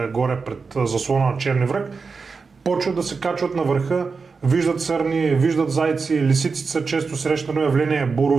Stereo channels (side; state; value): left; quieter; 4.8 dB